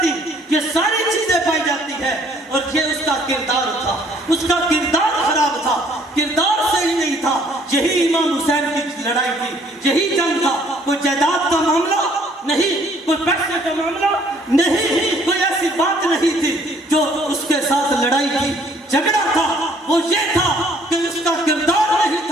یہ ساری چیزیں پائی جاتی ہے. اور یہ اس کا کردار تھا، اس کا کردار خراب تھا، کردار صحیح نہیں تھا. یہی امام حسین کی لڑائی تھی، یہی جنگ تھا. کوئی جائیداد کا معاملہ نہیں، کوئی پیسے کا معاملہ نہیں، کوئی ایسی بات نہیں تھی. جو اس کے ساتھ لڑائی کی، جھگڑا تھا، وہ یہ تھا کہ اس کا کردار نہیں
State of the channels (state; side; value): normal; both; correlation 0.61